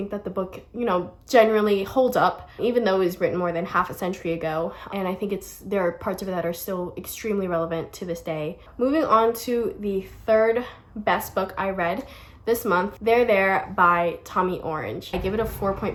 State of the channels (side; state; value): both; identical; correlation 1.00